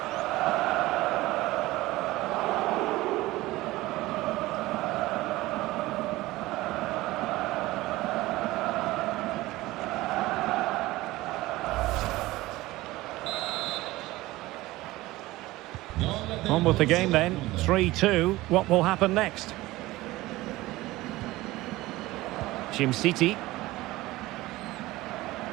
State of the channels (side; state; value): left; quieter; 18.5 dB